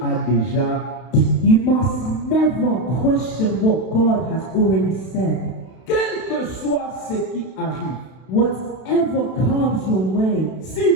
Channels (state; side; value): late; right; 32 ms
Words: a déjà dit. You must never question what God has already said. Quel que soit ce qui arrive, Whatever comes your way, si